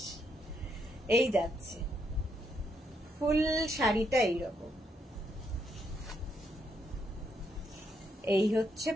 এই যাচ্ছে ফুল শাড়িটা এইরকম, এই হচ্ছে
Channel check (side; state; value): both; normal; correlation 0.77